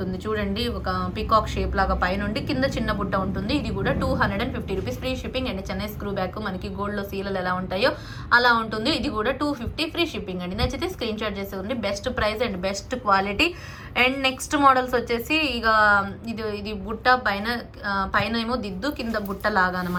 చూడండి. ఒక పికాక్ షేప్ లాగా పైన ఉండి కింద చిన్న బుట్ట ఉంటుంది. ఇది కూడా 250 rupees free shipping. And Chennai screw back మనకి గోల్డ్లో సీలలు ఎలా ఉంటాయో అలా ఉంటుంది. ఇది కూడా 250 ఫ్రీ షిప్పింగ్ అండి. నచ్చితే స్క్రీన్ షాట్ చేసేయండి. Best price and best quality. And next models వచ్చేసి ఇక ఇది బుట్ట పైన ఏమో దిద్దు, కింద బుట్ట లాగా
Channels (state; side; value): identical; both; correlation 1.00